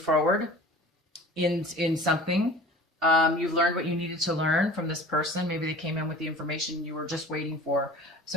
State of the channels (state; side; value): normal; both; correlation 0.42